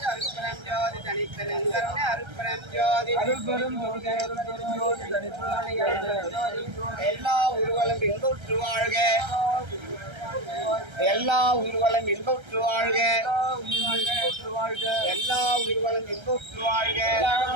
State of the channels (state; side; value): late; left; 1.3 ms